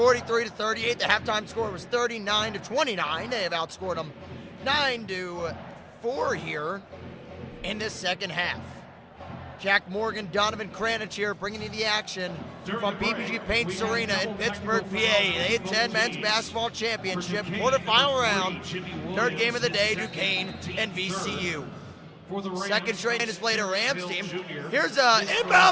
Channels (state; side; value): identical; both; correlation 1.00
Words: The halftime score was 39-29. They have outscored them 9-4 here in this second half. Jack Morgan, Donovan Kranich here bringing you the action from PPG Paints Arena in Pittsburgh, PA. The A10 Men's Basketball Championship quarterfinal round. Third game of the day, Duquesne and VCU. Second straight is played a Rams team. Here's an